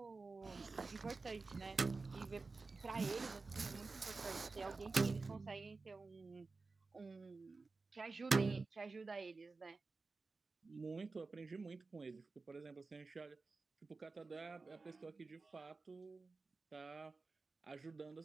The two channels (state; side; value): quieter; left; 3.9 dB